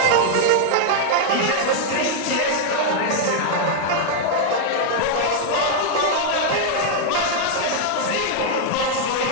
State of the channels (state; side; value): different; both; correlation -0.01